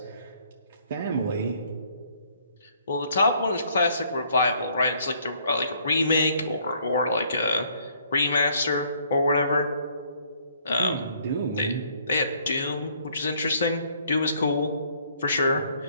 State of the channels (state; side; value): inverted; both; correlation -0.64